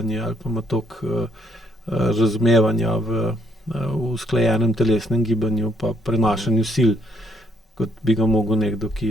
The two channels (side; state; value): both; normal; correlation 0.70